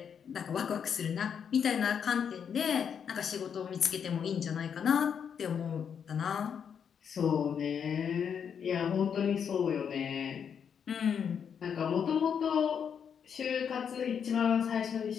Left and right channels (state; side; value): quieter; right; 7.5 dB